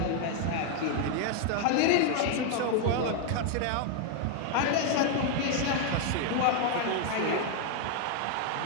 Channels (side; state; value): both; different; correlation 0.00